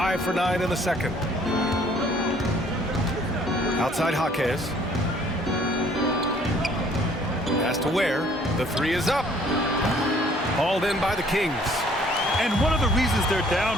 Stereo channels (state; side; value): normal; both; correlation 0.59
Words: for 9 in the second. Outside Jaquez. Pass to Ware. The three is up. Hauled in by the Kings. And one of the reasons they're